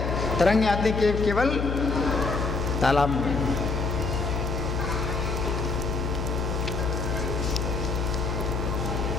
तरंग आती केवल तालाब में।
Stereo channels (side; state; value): left; noise; hum, 1 dB below the sound